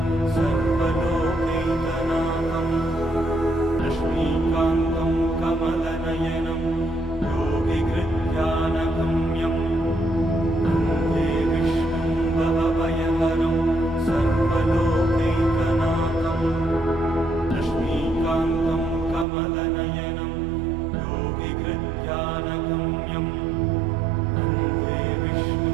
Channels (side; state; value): left; drops out; at 19.2 s